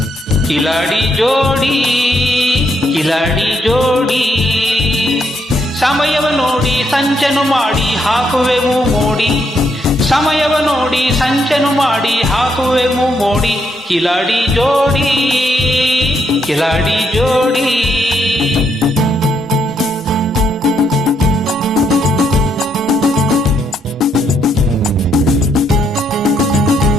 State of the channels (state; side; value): normal; both; correlation 0.76